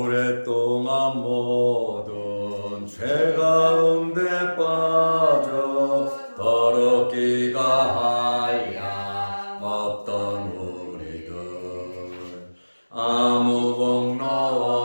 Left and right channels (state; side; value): inverted; both; correlation -1.00